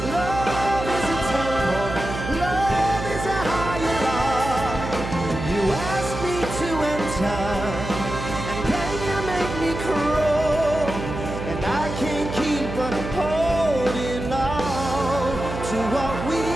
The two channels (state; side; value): noise; right; hum, 7 dB below the sound